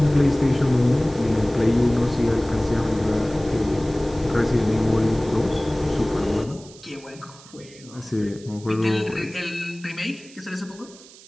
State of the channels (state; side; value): noise; right; hiss, 21 dB below the sound